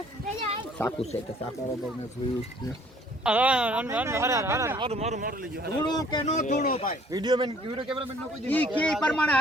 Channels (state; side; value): normal; both; correlation 0.57